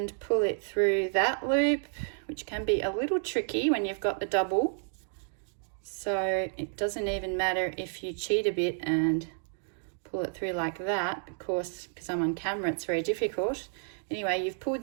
pull it through that loop, which can be a little tricky when you've got the double. So it doesn't even matter if you cheat a bit and pull it through like that. Of course, because I'm on camera, it's very difficult. Anyway, you've pulled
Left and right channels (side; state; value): left; silent; digital silence